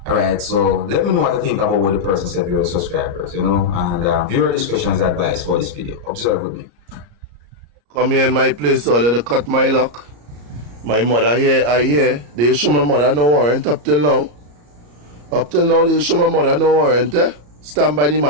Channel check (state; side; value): late; left; 34 ms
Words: Alright, so let me know what to think about what the person said, viewer subscribers, you know, and viewer discretion is advised for this video. Observe with me. Come here in my place, so let cut my lock. My mother here, I hear. They show my mother no warrant up till now. Up till now, they show my mother no warrant, eh? Stand by the